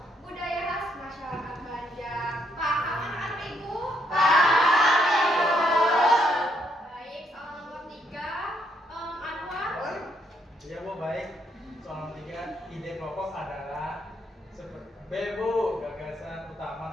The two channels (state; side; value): normal; both; correlation 0.74